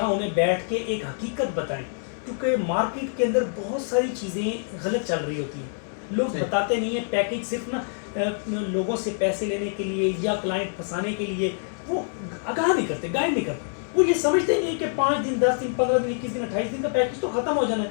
انہیں بیٹھ کے ایک حقیقت بتائیں. کیونکہ مارکیٹ کے اندر بہت ساری چیزیں غلط چل رہی ہوتی ہیں، لوگ بتاتے نہیں ہیں. پیکیج صرف نا لوگوں سے پیسے لینے کے لیے یا کلائنٹ پھنسانے کے لیے وہ آگاہ نہیں کرتے، گائیڈ نہیں کرتے. وہ یہ سمجھتے نہیں کہ 5 دن 10 دن 15 دن 21 دن 28 دن کا پیکیج تو ختم ہو جانا ہے،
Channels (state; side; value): silent; right; digital silence